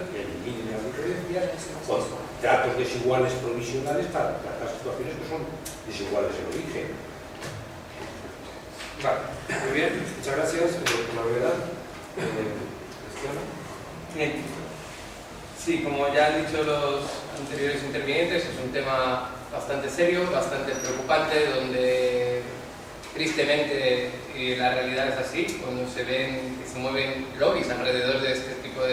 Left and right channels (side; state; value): both; identical; correlation 1.00